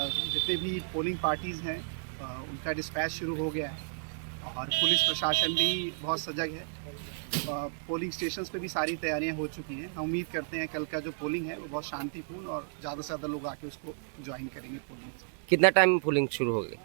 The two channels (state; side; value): silent; left; digital silence